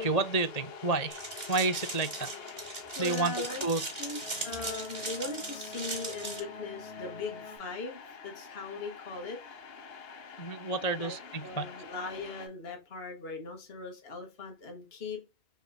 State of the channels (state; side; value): late; right; 2.1 ms